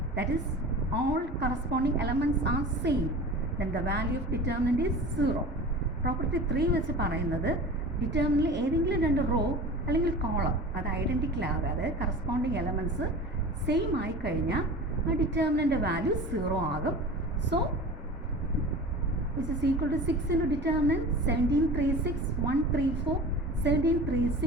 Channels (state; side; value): normal; both; correlation 0.36